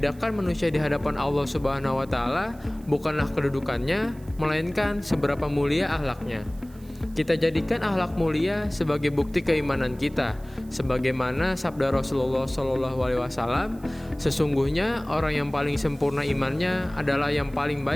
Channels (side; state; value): right; noise; hiss, 27 dB below the sound